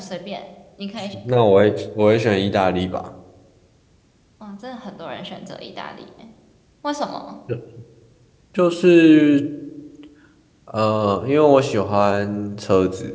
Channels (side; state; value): both; identical; correlation 1.00